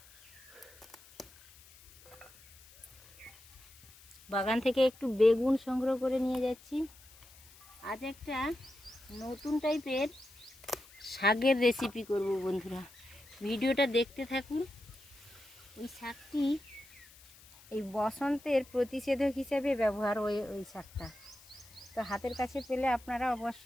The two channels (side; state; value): left; noise; hiss, 23 dB below the sound